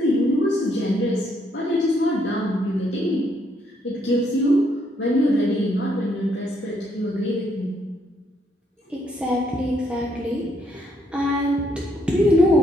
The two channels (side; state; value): both; normal; correlation 0.72